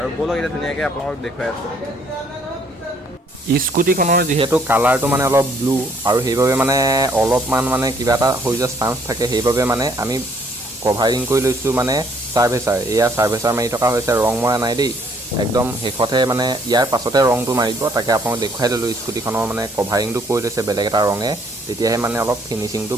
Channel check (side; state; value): both; normal; correlation 0.65